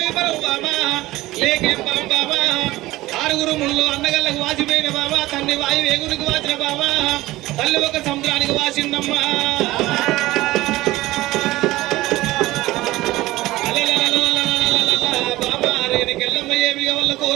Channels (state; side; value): quieter; left; 17.8 dB